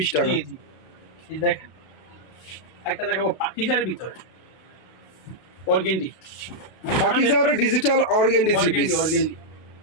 টাকা। জি জি, এই দেখেন একটা দেখাবো পাকিজার ভিতরে organdie, পাকিজার digital organdie three piece. Organdie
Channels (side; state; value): right; late; 32 ms